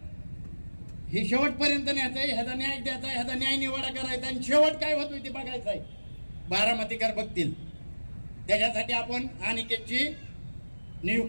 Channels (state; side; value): inverted; both; correlation -1.00